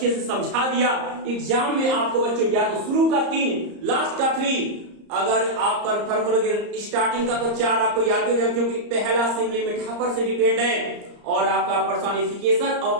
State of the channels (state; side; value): late; left; 34 ms